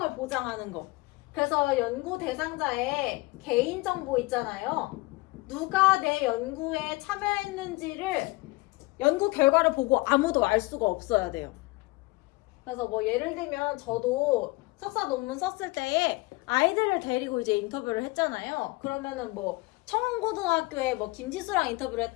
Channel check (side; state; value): right; quieter; 23.1 dB